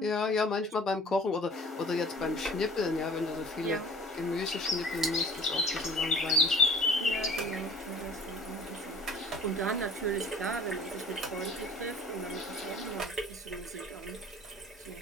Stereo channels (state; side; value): normal; both; correlation 0.47